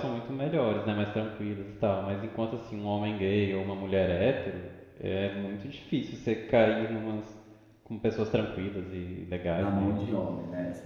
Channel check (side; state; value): both; identical; correlation 1.00